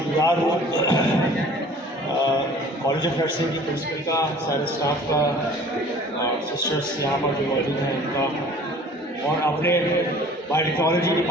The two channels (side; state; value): both; normal; correlation 0.49